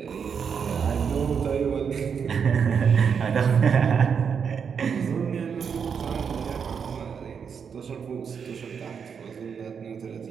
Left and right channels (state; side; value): quieter; left; 6.7 dB